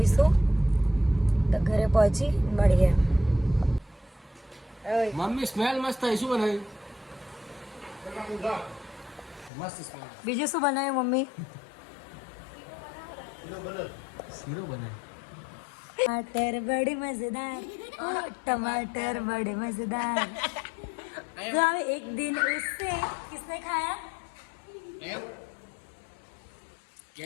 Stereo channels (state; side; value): drops out; right; at 9.5 s